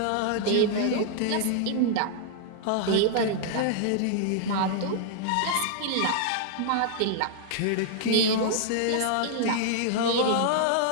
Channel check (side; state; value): both; different; correlation -0.01